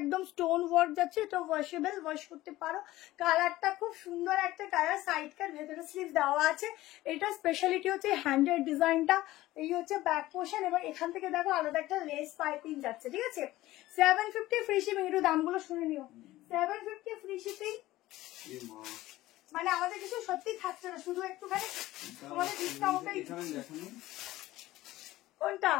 স্টোন ওয়ার্ক যাচ্ছে, এটা ওয়াশেবল, ওয়াশ করতে পারো, কালারটা খুব সুন্দর একটা কালার, সাইড কাট, ভেতরে স্লিভ দেওয়া আছে, এটা স্পেশালিটি হচ্ছে হ্যান্ডের ডিজাইনটা, এই হচ্ছে ব্যাক পোর্শন, এবং এখান থেকে দেখো আলাদা একটা লেস পাইপিং যাচ্ছে, ঠিক আছে। 750 ফ্রি শিপিং, একটু দামগুলো শুনে নিও, 750 ফ্রি শিপিং, মানে আমাদের কিছু সত্যি থাকছে না, শুধু একটুখানি তোমাদের ডিসকাউন্টটাই। কোনটা?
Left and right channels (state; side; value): quieter; right; 16.7 dB